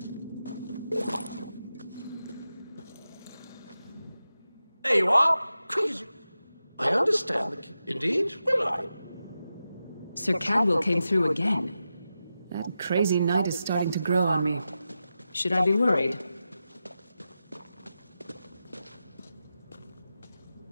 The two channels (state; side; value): inverted; both; correlation -0.91